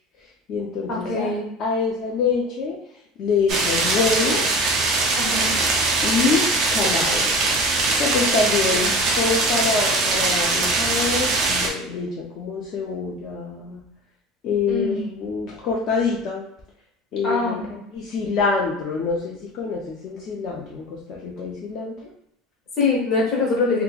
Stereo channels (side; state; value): both; normal; correlation 0.34